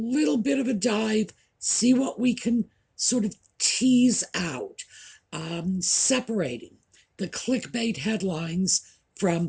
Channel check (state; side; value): identical; both; correlation 1.00